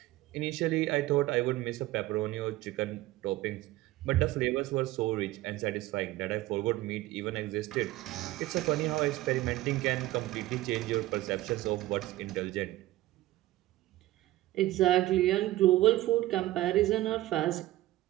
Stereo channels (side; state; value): left; quieter; 16.4 dB